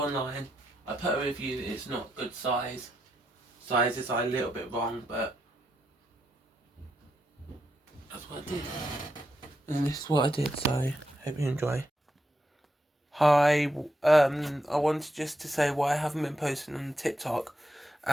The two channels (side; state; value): both; normal; correlation 0.83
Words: I put a review that it's not good size. Sizes are a little bit wrong, but that's what I did. And this is what I did, so hope you enjoy. Hi, I wanted just to say why I haven't been posting on TikTok,